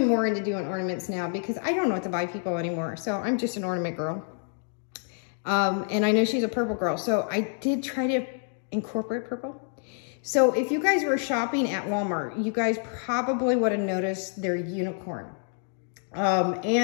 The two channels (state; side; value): silent; right; 60 dB below the other